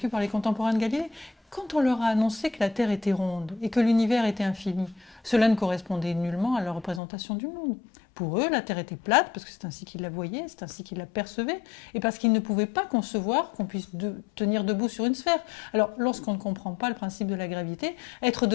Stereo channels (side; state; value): right; drops out; at 7.0 s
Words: par les contemporains de Galilée. Quand on leur a annoncé que la Terre était ronde et que l'univers était infini, cela ne correspondait nullement à leur représentation du monde. Pour eux, la Terre était plate, parce que c'est ainsi qu'ils la voyaient, c'est ainsi qu'ils la percevaient, et parce qu'ils ne pouvaient pas concevoir qu'on puisse tenir debout sur une sphère. Alors, lorsqu'on ne comprend pas le principe de la gravité, être